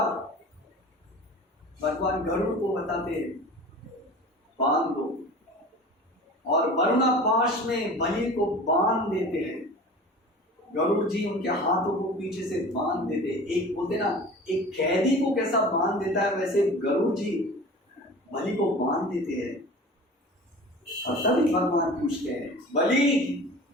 भगवान गरुड़ को बताते बांध दो, और वरुणा पाश में बलि को बांध देते हैं। गरुड़ जी उनके हाथों को पीछे से बांध देते, एक बोलते ना एक कैदी को कैसा बांध देता है वैसे गरुड़ जी बलि को बांध देते हैं। और तभी भगवान पूछते हैं, बलि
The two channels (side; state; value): both; normal; correlation 0.39